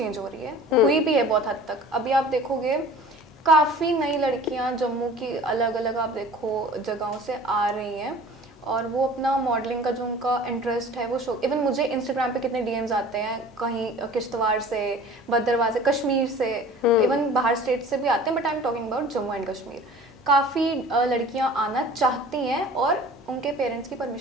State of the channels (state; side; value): normal; both; correlation 0.44